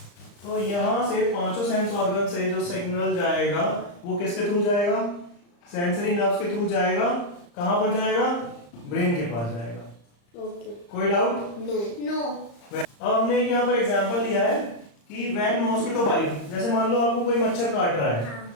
तो यहाँ से पांचों सेंस ऑर्गन से जो सिग्नल जाएगा वो किसके थ्रू जाएगा? सेंसरी नर्व्स के थ्रू जाएगा। कहाँ पर जाएगा? ब्रेन के पास जाएगा। ओके, कोई डाउट? नो। अब हमने यहाँ पर एग्जांपल लिया है कि व्हेन मॉस्किटो बाइट, जैसे मान लो आपको कोई मच्छर काट रहा है,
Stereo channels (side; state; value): right; late; 35 ms